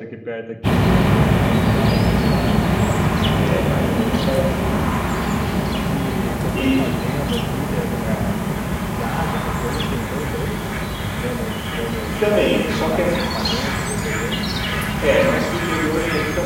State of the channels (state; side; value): identical; both; correlation 1.00